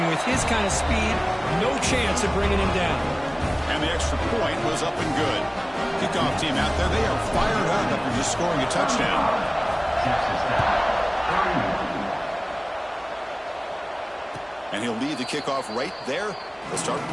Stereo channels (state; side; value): identical; both; correlation 1.00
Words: with his kind of speed, no chance of bringing him down. And the extra point was up and good. Kickoff team out there, they are fired up after just scoring a touchdown. And he'll lead the kickoff right there. They'll start